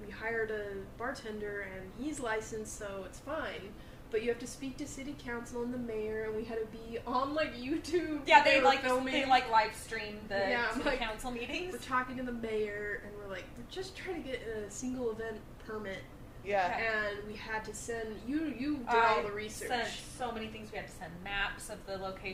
hired a bartender and he's licensed, so it's fine. But you have to speak to city council and the mayor, and we had to be on like YouTube. Yeah, they filming. they live stream the city council meetings. We're talking to the mayor, and we're like, we're just trying to get a single event permit. Yeah. And we had to send, you did all the research. Sent so many things. We had to send maps of the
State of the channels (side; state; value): both; identical; correlation 1.00